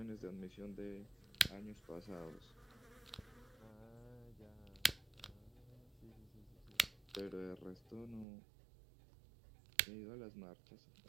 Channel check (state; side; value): drops out; left; at 8.2 s